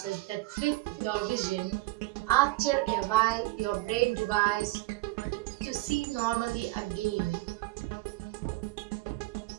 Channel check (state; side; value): quieter; left; 20.4 dB